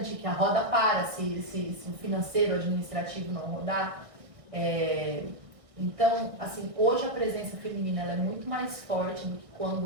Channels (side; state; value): left; late; 1.6 ms